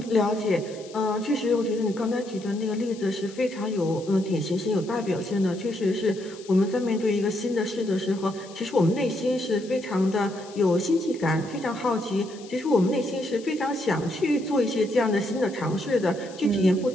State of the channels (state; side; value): noise; left; hiss, 21 dB below the sound